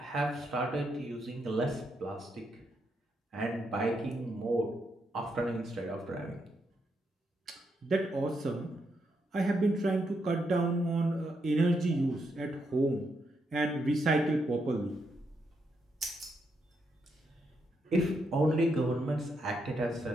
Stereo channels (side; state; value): both; normal; correlation 0.80